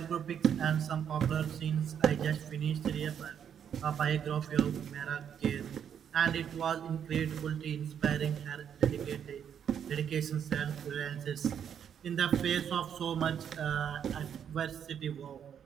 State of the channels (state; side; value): quieter; left; 8.5 dB